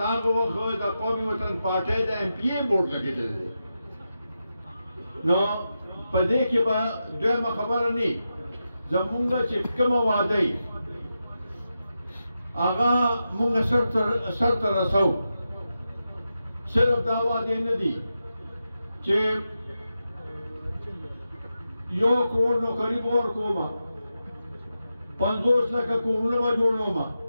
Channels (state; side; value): inverted; both; correlation -0.89